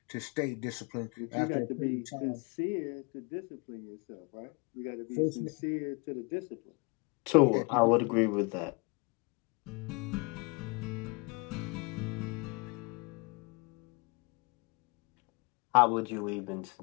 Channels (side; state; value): right; quieter; 29.9 dB